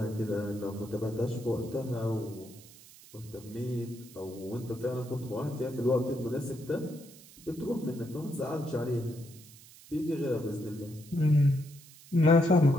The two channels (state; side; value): noise; right; hiss, 21 dB below the sound